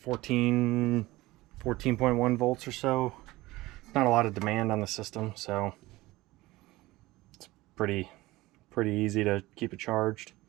14.1 volts or so. Not a lot of demand on the system, so it's pretty easy to keep it charged.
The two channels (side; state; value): left; quieter; 19.2 dB